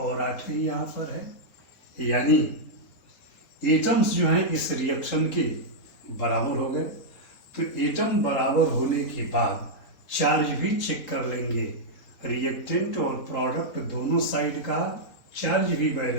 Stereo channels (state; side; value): late; right; 3.0 ms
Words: 8 ही यहाँ पर है, यानी एटम्स जो हैं इस रिएक्शन के बराबर हो गए। तो एटम बराबर होने के बाद चार्ज भी चेक कर लेंगे, रिएक्टेंट और प्रोडक्ट दोनों साइड का चार्ज भी